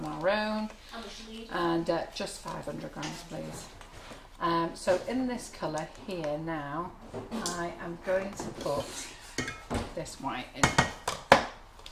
our own. How much do you need? And just 500 grams, please. So in this colour here now, I am going to put this white in.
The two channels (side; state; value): both; identical; correlation 1.00